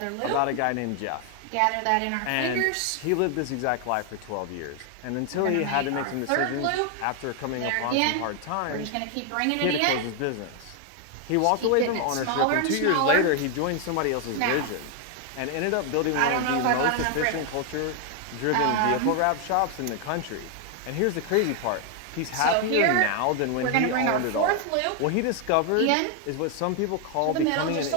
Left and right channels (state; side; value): different; both; correlation 0.00